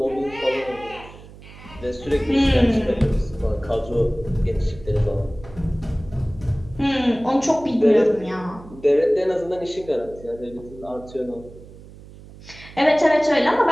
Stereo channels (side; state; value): right; noise; hum, 19 dB below the sound